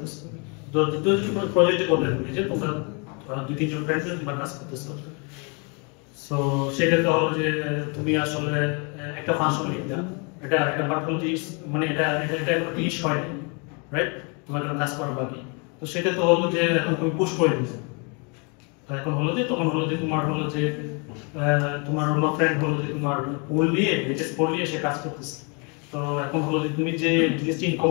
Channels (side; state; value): right; quieter; 34.0 dB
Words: প্রজেক্টে করতে হবে যে তোমরা দুই তিনজন ফ্রেন্ড তোমরা কাজ করতেছো সো সেক্ষেত্রে হলো যে তুমি আসলে একটা ফাংশন লিখতে এটা একটা পার্টিকুলার মানে এটা একটা ফিনিশ হয় রাইট তোমার জন্য কাজ করা বাকি তো সেটা তো হলো যে এখন তুমি পুশ করে দিচ্ছ তো এখন হলো যে তখন হলো যে তোমার হলো যে তোমার অন্য ফ্রেন্ড হলো যে তোমার পোল নিয়ে এইচএস পোল নিয়ে সে কাজ করতেছে তো এখন হলো যে তুমি যে জিনিসটি